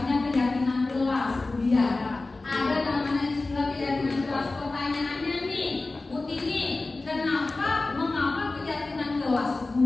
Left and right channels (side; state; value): right; quieter; 3.3 dB